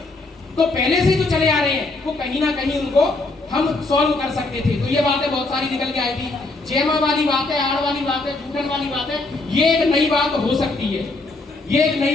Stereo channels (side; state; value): right; quieter; 3.2 dB